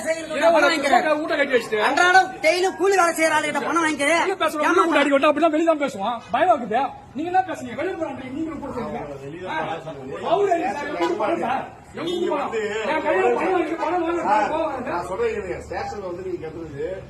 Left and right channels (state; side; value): identical; both; correlation 1.00